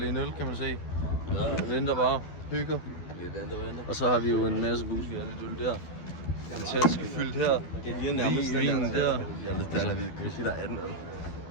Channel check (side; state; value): right; late; 12 ms